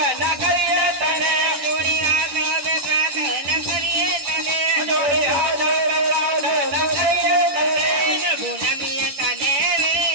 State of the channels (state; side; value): late; left; 11 ms